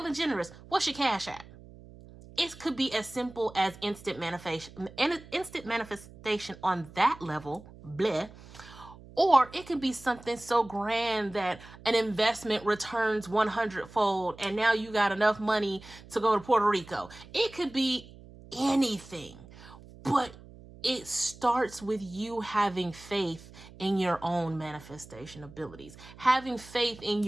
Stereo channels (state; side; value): noise; right; hum, 19 dB below the sound